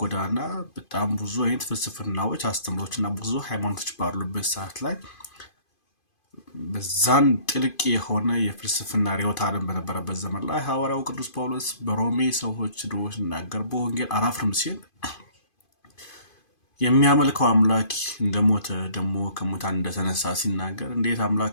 ጎዳና በጣም ብዙ አይነት ፍልስፍናዎች አስተምሮችና ብዙ ሃይማኖቶች ባሉበት ሰዓት ላይ በዛን ጥልቅ የሆነ የፍልስፍና ርዕዮተ ዓለም በነበረበት ዘመን ላይ ሐዋርያው ቅዱስ ጳውሎስ በሮሜ ሰዎች ድሮ ሲናገር በወንጌል አላፍርም ሲል የሚያመልከው አምላክ እንደሞተ ደግሞ ከሙታን እንደተነሳ ሲናገር እንዴት አምላክ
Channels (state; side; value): late; right; 2.5 ms